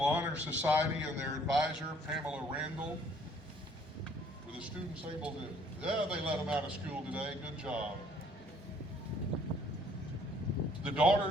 Society and their advisor, Pamela Randall. Were the students able to, yeah, they let them out of school today. Good job. The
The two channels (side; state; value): both; normal; correlation 0.61